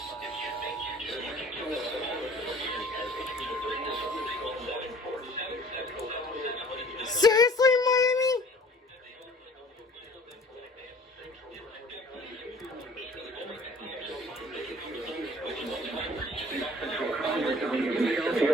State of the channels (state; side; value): normal; both; correlation 0.50